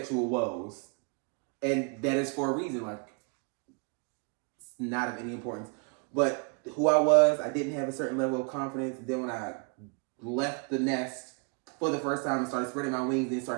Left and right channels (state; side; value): quieter; left; 39.0 dB